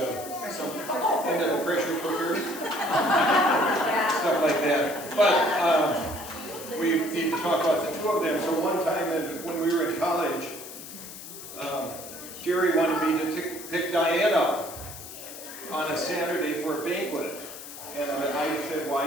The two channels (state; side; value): noise; left; hiss, 13 dB below the sound